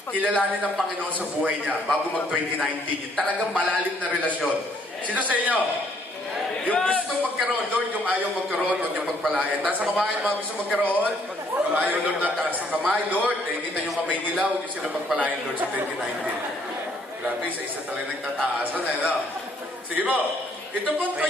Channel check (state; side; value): normal; both; correlation 0.66